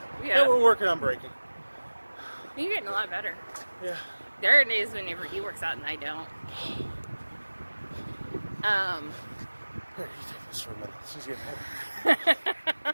we're working on breaking. You're getting a lot better. Yeah. There are days whenever he works out and I don't. Here, you take this for a minute. She's getting heavy.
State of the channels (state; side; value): inverted; both; correlation -1.00